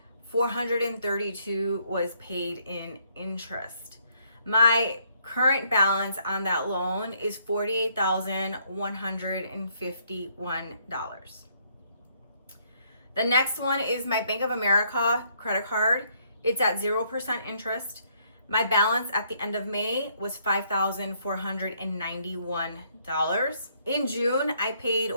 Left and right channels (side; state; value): both; inverted; correlation -0.69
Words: $432 was paid in interest. My current balance on that loan is $48,151. The next one is my Bank of America credit card. It's at 0% interest. My balance at the end of May was $5,491. In June, I paid